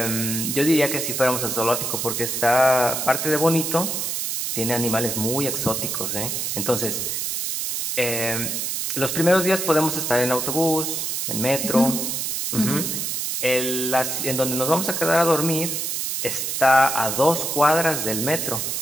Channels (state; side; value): noise; right; hiss, 2 dB below the sound